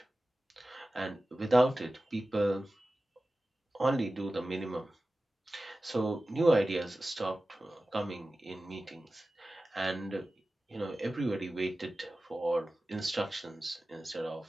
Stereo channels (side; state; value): both; normal; correlation 0.96